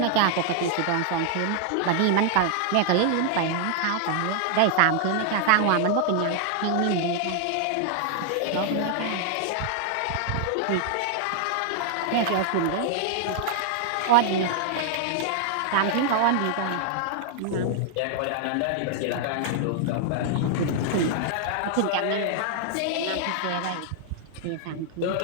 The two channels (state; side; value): different; both; correlation 0.00